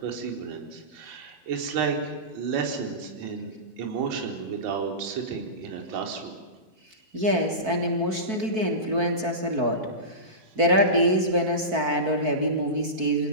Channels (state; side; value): late; left; 4.5 ms